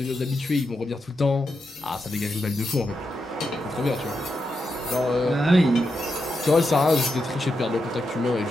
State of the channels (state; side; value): normal; both; correlation 0.85